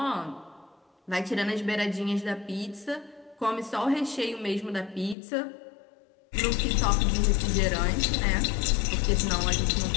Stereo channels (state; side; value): drops out; right; at 5.2 s